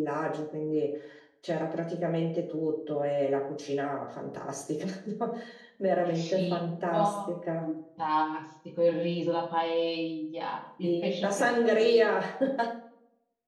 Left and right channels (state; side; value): identical; both; correlation 1.00